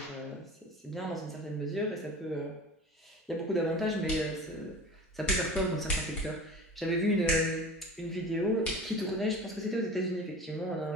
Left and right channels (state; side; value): normal; both; correlation 0.36